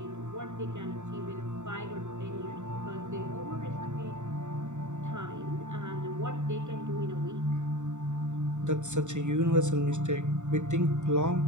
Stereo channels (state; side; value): late; left; 0.84 ms